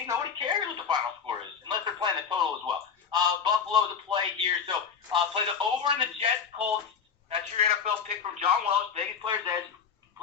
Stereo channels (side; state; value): right; quieter; 6.7 dB